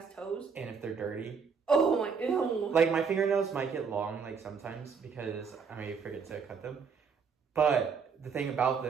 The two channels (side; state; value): left; quieter; 5.9 dB